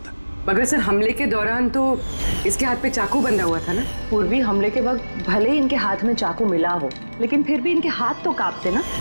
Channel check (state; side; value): inverted; both; correlation -1.00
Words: मगर सर हमले के दौरान तो इसके हाथ पे चाकू बंधा हुआ था ना। पूर्वी हमले के वक्त भले ही इनके हाथ में चाकू मिला हो, लेकिन फिर भी इनके हाथ तो कांपते ना,